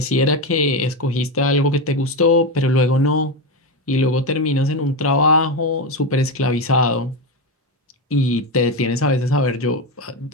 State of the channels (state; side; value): normal; both; correlation 0.13